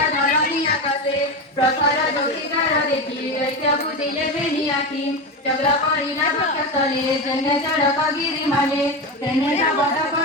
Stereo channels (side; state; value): both; normal; correlation 0.19